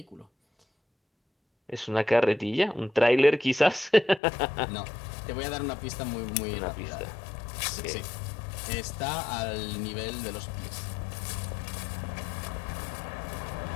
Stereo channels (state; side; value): drops out; right; at 4.2 s